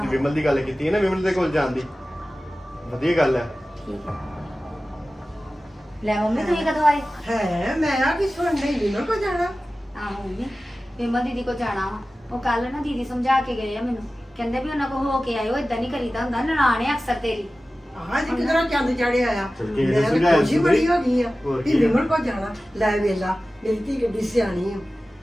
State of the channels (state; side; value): normal; both; correlation 0.96